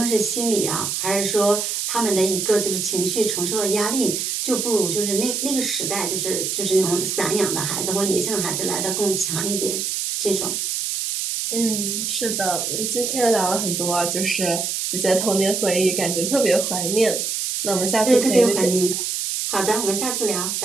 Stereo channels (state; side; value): noise; right; hiss, 1 dB below the sound